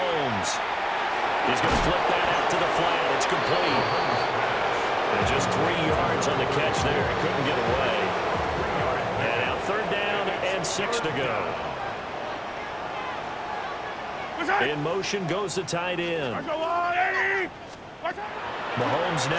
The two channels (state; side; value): identical; both; correlation 1.00